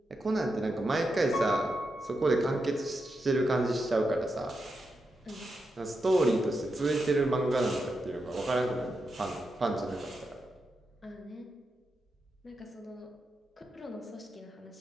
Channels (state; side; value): normal; both; correlation 0.87